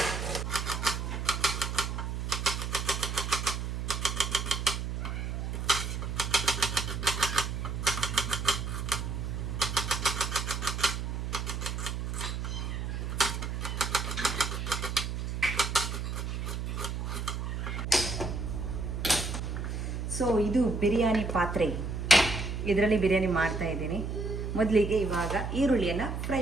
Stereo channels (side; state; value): right; noise; hum, 3 dB below the sound